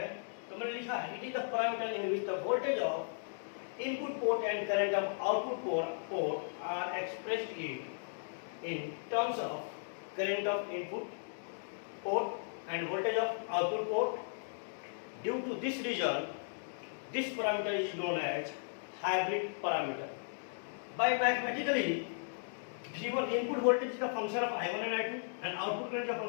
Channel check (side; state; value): right; silent; digital silence